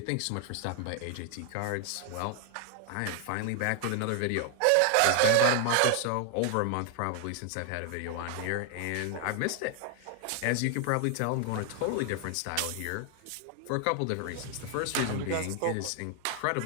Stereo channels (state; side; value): different; both; correlation 0.00